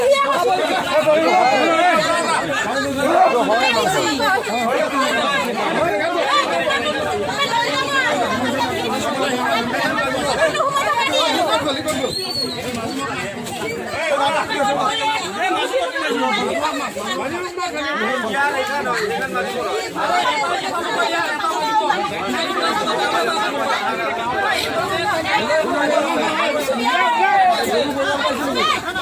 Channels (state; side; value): identical; both; correlation 1.00